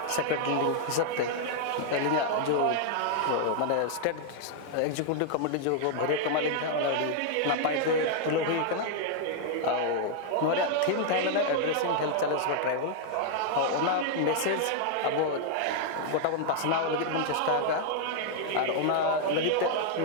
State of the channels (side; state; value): both; different; correlation 0.00